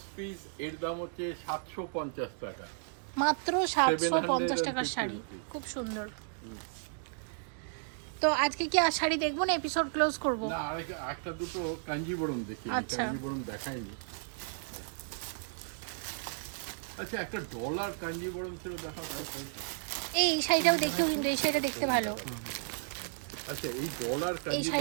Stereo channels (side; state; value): left; silent; digital silence